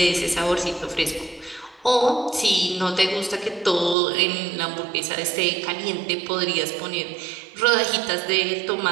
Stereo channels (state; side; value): drops out; left; at 4.0 s